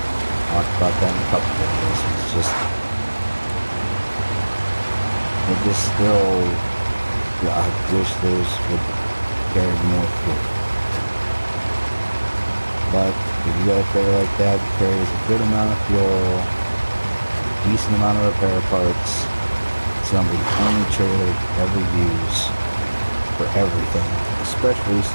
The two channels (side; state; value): both; inverted; correlation -1.00